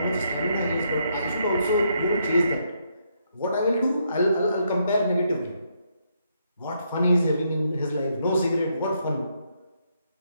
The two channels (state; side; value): inverted; both; correlation -0.76